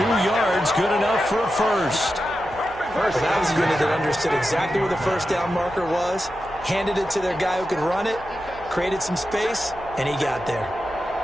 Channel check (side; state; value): right; noise; hum, 19 dB below the sound